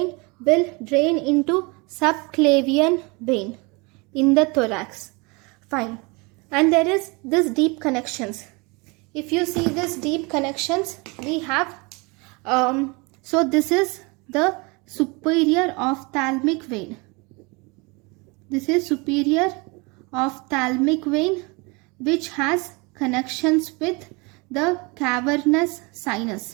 will drain into subclavian vein in the thorax. Fine. And there is this deep connections. If you see this deep connections, we have, so this is the superior ophthalmic vein. This is superior ophthalmic vein which has connections with the cavernous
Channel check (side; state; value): left; quieter; 28.0 dB